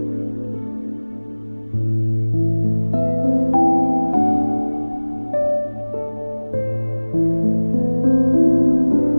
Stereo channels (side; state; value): both; inverted; correlation -1.00